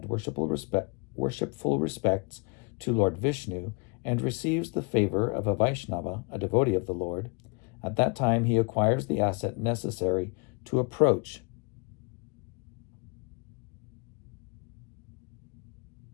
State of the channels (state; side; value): quieter; right; 32.3 dB